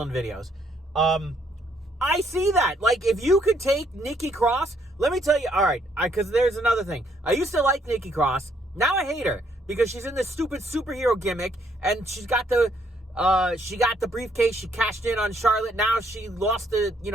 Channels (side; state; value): both; normal; correlation 0.69